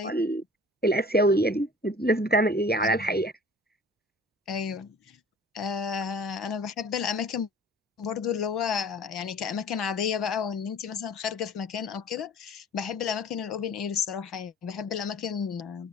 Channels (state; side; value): normal; both; correlation 0.46